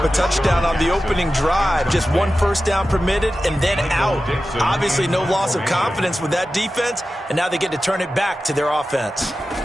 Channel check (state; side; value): normal; both; correlation 0.94